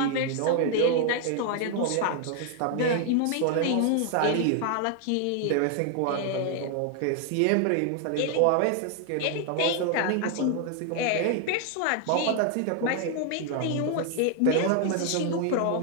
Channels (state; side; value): different; both; correlation 0.00